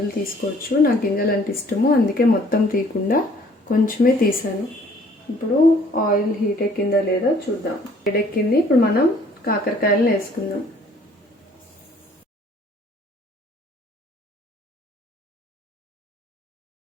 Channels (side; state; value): both; normal; correlation 0.58